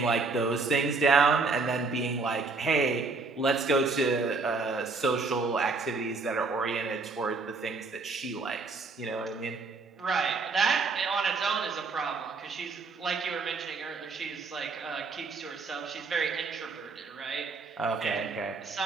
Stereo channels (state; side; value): quieter; left; 4.1 dB